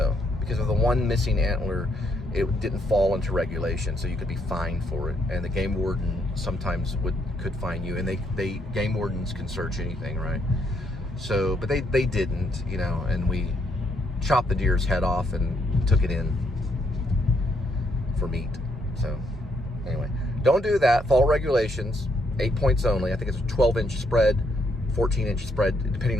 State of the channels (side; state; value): both; normal; correlation 0.74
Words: because of the one missing antler, it didn't fall into regulation, so you could be fined for it. And the game warden sometimes could fine you, and they game wardens can search anything, right? So, but they didn't, and we chopped the deer's head off and took it in for meat. So anyway, don't do that. Follow regulations. 8 points only. I think it's a 12-inch spread, 14-inch spread, depending